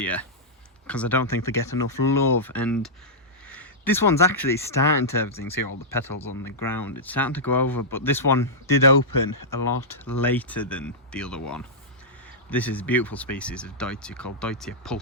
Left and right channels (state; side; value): normal; both; correlation -0.11